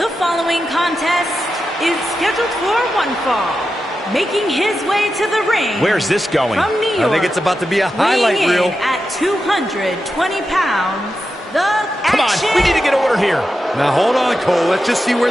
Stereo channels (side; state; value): both; normal; correlation 0.89